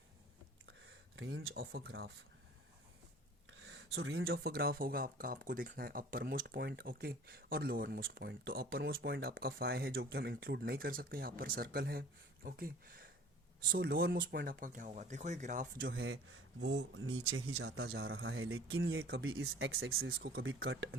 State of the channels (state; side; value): normal; both; correlation 0.47